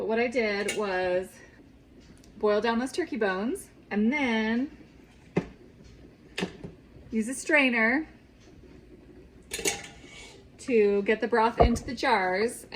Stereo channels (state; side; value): identical; both; correlation 1.00